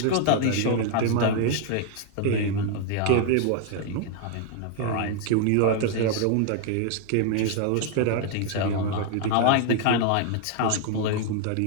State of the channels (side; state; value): both; different; correlation 0.00